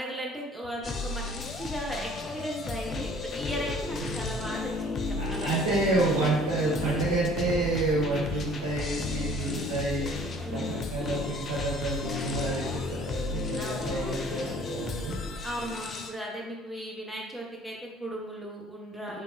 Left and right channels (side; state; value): both; normal; correlation 0.54